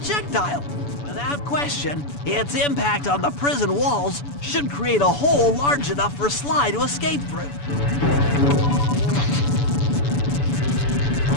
Without question, its impact on the prison walls should create a hole large enough for Sly to escape through.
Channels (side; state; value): right; late; 7.0 ms